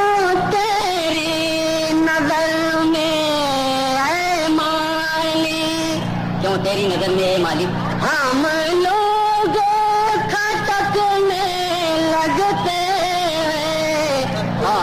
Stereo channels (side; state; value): both; identical; correlation 1.00